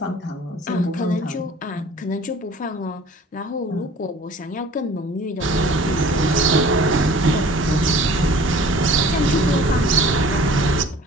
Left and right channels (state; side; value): normal; both; correlation 0.48